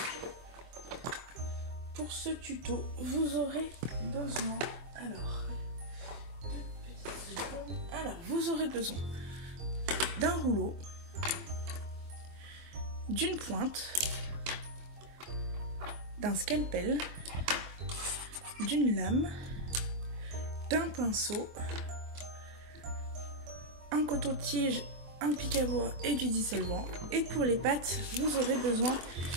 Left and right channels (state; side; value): late; left; 24 ms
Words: pour ce tuto, vous aurez besoin, vous aurez besoin d'un rouleau, d'une pointe, d'un scalpel, d'une lame, d'un pinceau, un coton-tige, un pic à bois et du dissolvant. Et pour les pattes, vous aurez besoin